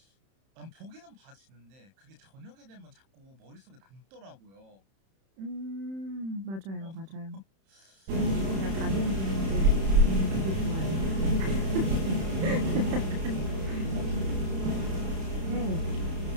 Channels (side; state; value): left; late; 31 ms